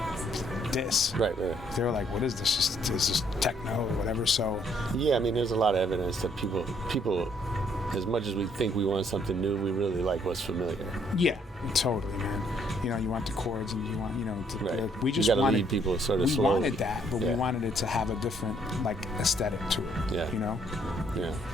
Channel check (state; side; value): normal; both; correlation 0.67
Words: diss. Right. They were like, what is this? Is this techno or whatever? So. Yeah, there's a lot of evidence that people, as much as we think we want something new, we really like what's familiar. Yeah, totally, man. You want the chords, and you want, we just wanted wanted people sort of we slowly. wanted that, but we wanted it to have a different aesthetic to it. Yeah.